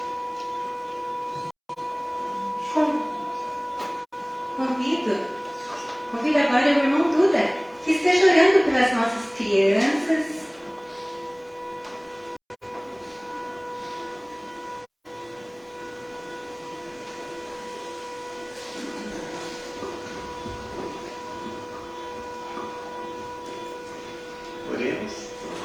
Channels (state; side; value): identical; both; correlation 1.00